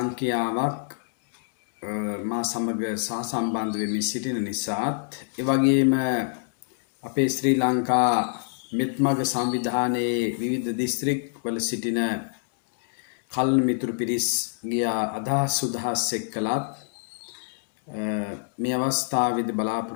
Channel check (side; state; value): right; silent; 61 dB below the other